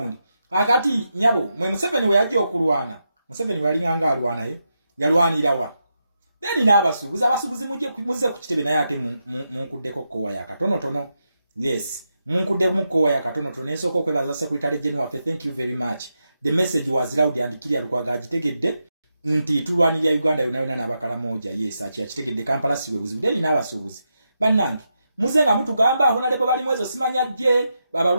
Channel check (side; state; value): both; inverted; correlation -0.85